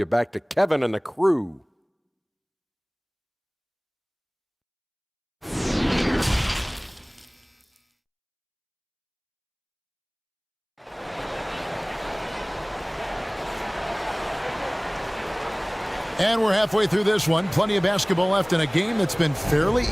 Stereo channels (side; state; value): both; identical; correlation 1.00